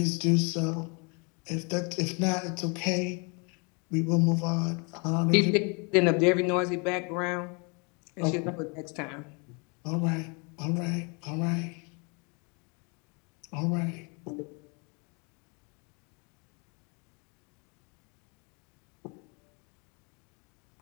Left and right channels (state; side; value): quieter; right; 33.2 dB